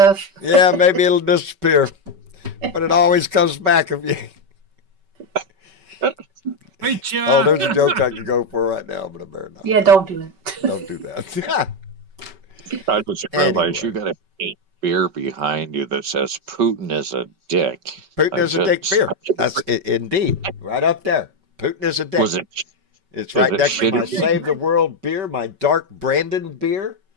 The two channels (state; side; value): late; left; 5.2 ms